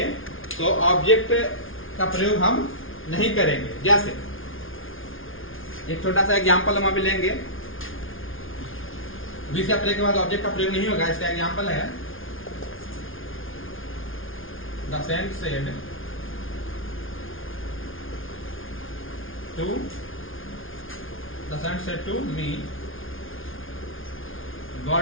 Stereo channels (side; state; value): right; late; 0.58 ms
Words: तो ऑब्जेक्ट का प्रयोग हम नहीं करेंगे। जैसे एक छोटा सा एग्जांपल हम अभी लेंगे, बीस या प्रे के बाद ऑब्जेक्ट का प्रयोग नहीं होगा। इसका एग्जांपल है The saint said to me,